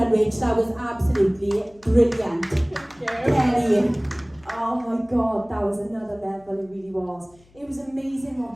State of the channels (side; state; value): left; noise; hum, 29 dB below the sound